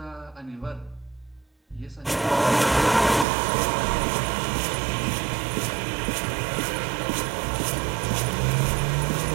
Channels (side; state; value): left; drops out; at 3.2 s